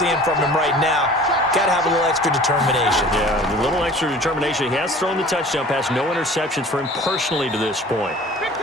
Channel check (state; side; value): normal; both; correlation 0.45